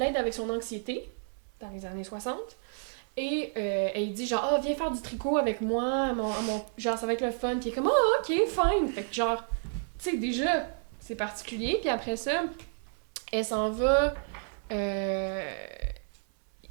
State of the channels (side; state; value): left; silent; 57 dB below the other